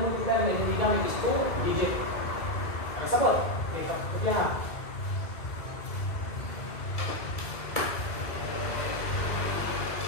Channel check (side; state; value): right; late; 2.2 ms